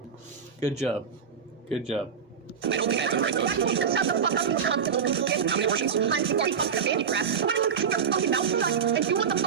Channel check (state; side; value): quieter; left; 6.8 dB